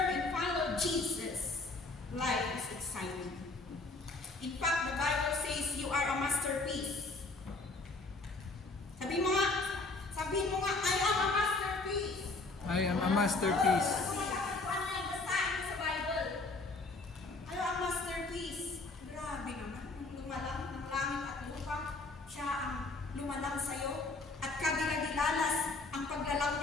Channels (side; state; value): right; quieter; 3.4 dB